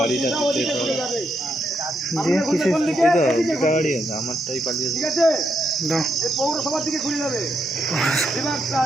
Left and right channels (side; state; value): both; normal; correlation 0.79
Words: ওদিকে চলে যাবে। ঠিক আছে, এই পৌরসভার দিকে ঘুরে যাবে। এবার